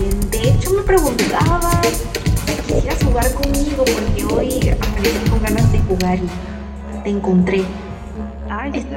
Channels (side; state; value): both; identical; correlation 1.00